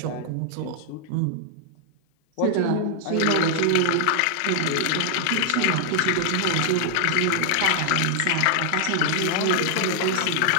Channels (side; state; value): both; different; correlation 0.00